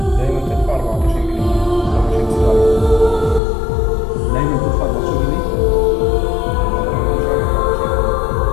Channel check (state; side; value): drops out; right; at 3.4 s